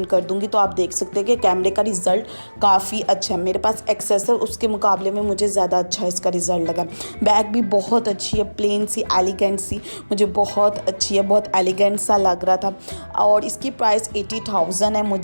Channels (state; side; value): inverted; both; correlation -1.00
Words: कर दूंगी, तो आप देख सकते हैं कि कैमरे का रिज़ल्ट काफ़ी अच्छा है। मेरे पास एक्सेस है, उसके मुकाबले में मुझे ज़्यादा अच्छा इसका रिज़ल्ट लगा। बैग भी बहुत अच्छी है, प्लेन सी एलिगेंट सी, मुझे बहुत अच्छी है, बहुत एलिगेंट सा लग रहा था। और इसकी प्राइस 80,000 है।